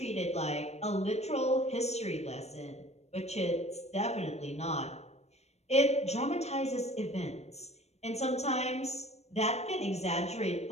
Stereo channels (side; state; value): right; late; 0.31 ms